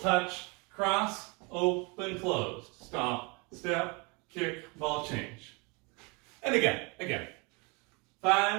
cross, open, closed. Stomp, step, kick, ball change. And again.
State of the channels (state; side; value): quieter; left; 30.0 dB